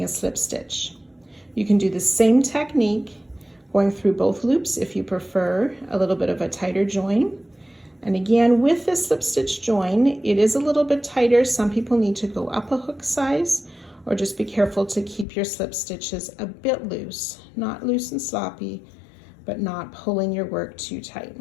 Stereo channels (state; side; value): drops out; right; at 15.2 s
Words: a slip stitch. You can do the same technique going through both loops if you prefer a little bit of a tighter join. And again, with this slip stitch join, it is a little bit tighter. Some people need to go up a hook size, or just be careful to keep your slip stitches a bit loose, not loose and sloppy, but not pulling your work too tight.